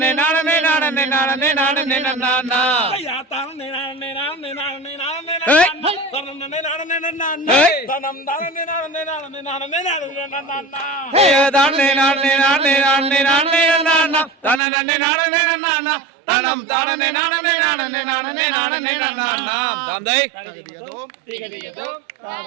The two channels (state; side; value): drops out; left; at 14.6 s